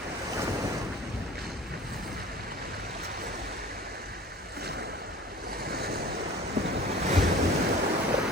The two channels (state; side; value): normal; both; correlation 0.43